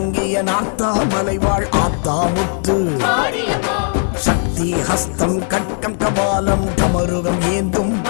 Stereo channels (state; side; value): silent; right; 55 dB below the other